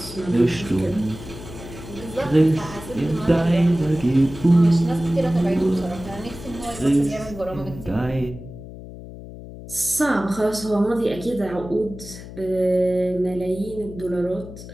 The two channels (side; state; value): left; noise; hum, 14 dB below the sound